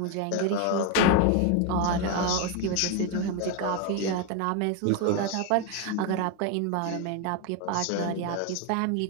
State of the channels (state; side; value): different; both; correlation 0.02